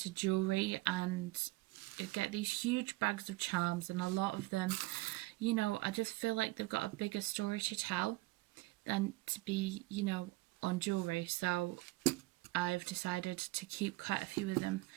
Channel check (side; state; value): left; quieter; 21.3 dB